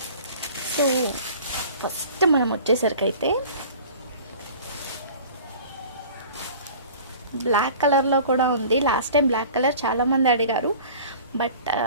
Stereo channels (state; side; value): inverted; both; correlation -0.44